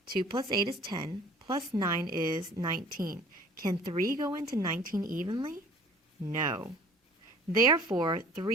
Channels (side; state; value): both; normal; correlation 0.49